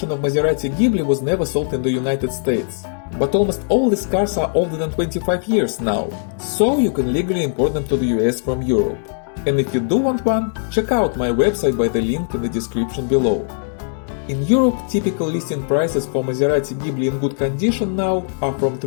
of Maserati Ghibli was never sold in the United States, but almost all these cars are older than 25 years now, so you can legally import them to the US from Europe. And if you do want one, check out my website by the link in the description below. In Europe, typical listing prices for Maserati Ghibli in good condition now are from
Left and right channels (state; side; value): silent; right; 66 dB below the other